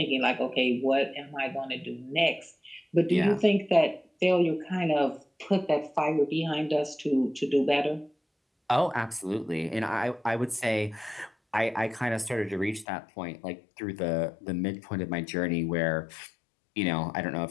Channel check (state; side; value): drops out; right; at 12.9 s